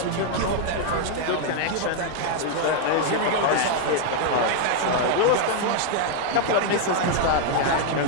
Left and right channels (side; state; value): both; different; correlation 0.00